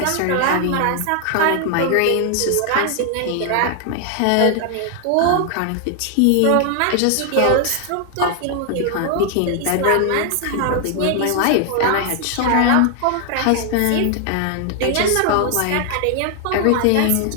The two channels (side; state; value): both; different; correlation 0.00